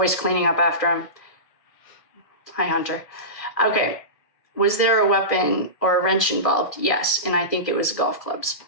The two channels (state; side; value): late; right; 1.4 ms